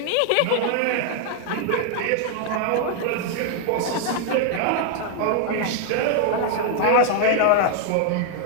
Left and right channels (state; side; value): different; both; correlation 0.00